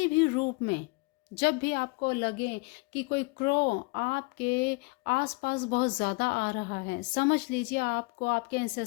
भी रूप में, जब भी आपको लगे कि कोई क्रो आपके आसपास बहुत ज़्यादा आ रहा है, समझ लीजिए आपको आपके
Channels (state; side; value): quieter; right; 28.4 dB